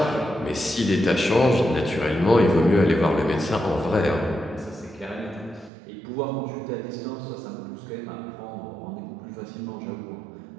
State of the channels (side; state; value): left; drops out; at 5.7 s